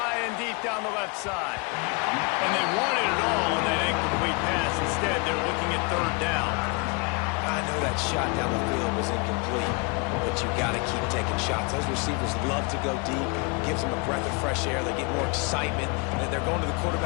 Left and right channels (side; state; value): right; quieter; 31.4 dB